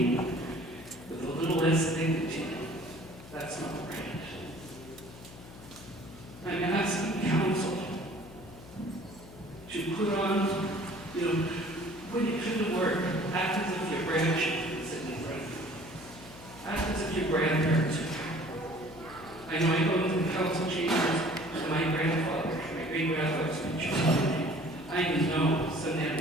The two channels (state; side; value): noise; left; hum, 17 dB below the sound